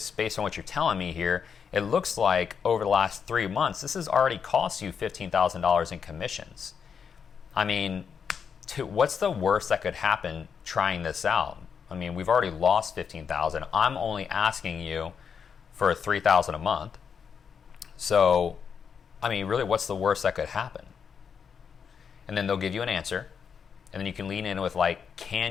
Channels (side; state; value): right; quieter; 6.7 dB